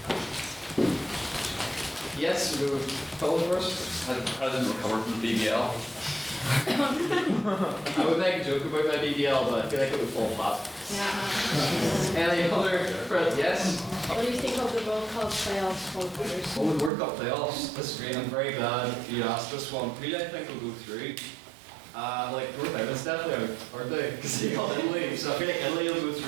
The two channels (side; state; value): left; drops out; at 16.9 s